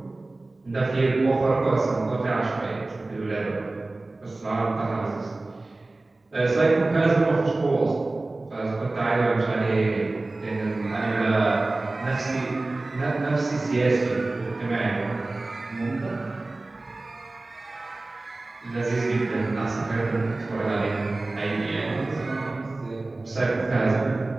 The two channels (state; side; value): quieter; left; 3.1 dB